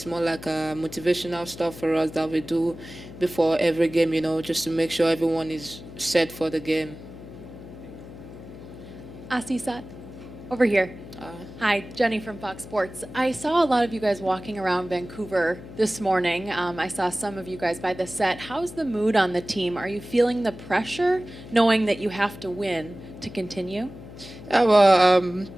more like a motivational stuff for us that we do before every game, just to make sure everyone is set for the game. Asisat, over here. Hi, Jenny from Fox Sports. I saw a lot of you guys walking around Vancouver this morning. I saw some of you guys by the set. How's the mood on the team? Are you feeling the pressure, knowing that you have to win to continue? Yeah, well,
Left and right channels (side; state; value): left; noise; hum, 15 dB below the sound